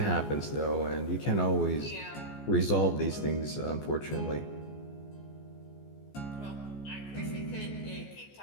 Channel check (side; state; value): right; late; 14 ms